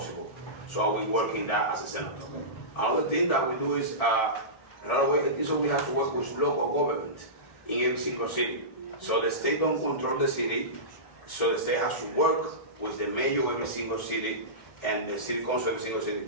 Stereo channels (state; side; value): late; right; 1.7 ms